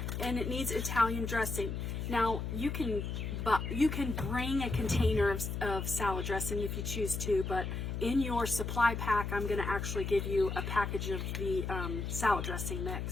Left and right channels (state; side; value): noise; left; hum, 3 dB below the sound